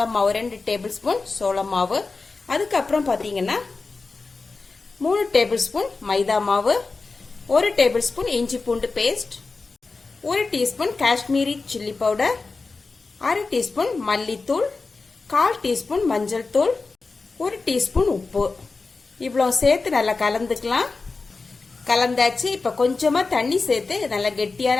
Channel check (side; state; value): right; quieter; 4.0 dB